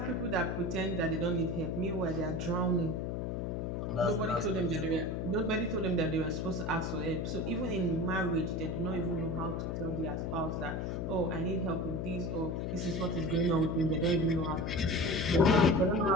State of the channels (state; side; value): noise; left; hum, 2 dB below the sound